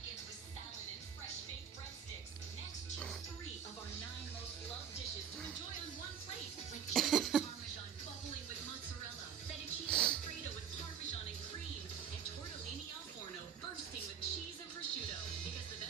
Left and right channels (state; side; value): quieter; left; 8.0 dB